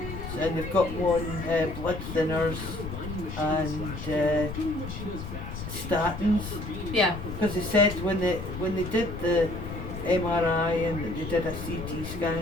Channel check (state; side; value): noise; left; rumble, 8 dB below the sound